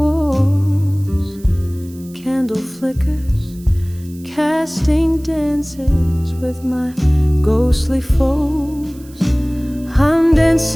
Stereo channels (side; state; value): right; noise; hiss, 24 dB below the sound